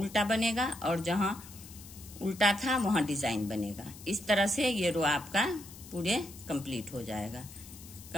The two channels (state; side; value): noise; left; hiss, 17 dB below the sound